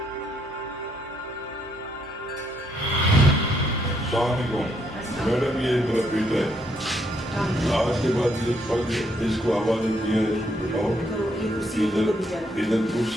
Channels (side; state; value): both; normal; correlation 0.74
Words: मैडम ये मेरा बेटा है, आज के बाद ये पद इसको हवाले किया है, इसको बिठाओ इधर